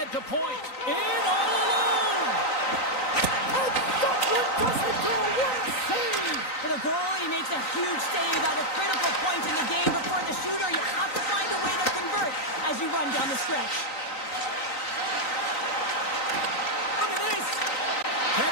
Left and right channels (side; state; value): right; late; 3.9 ms